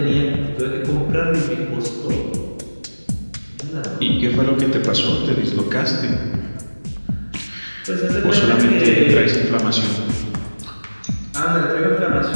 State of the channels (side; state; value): both; inverted; correlation -1.00